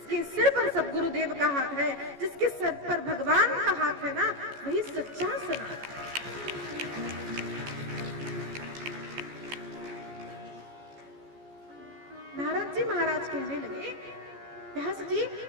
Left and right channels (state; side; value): late; left; 14 ms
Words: सिर पर सद्गुरुदेव का हाथ है, जिसके सर पर भगवान का हाथ है ना, वही सच्चा सनातन है। नारद जी महाराज कहने लगे, व्यास जी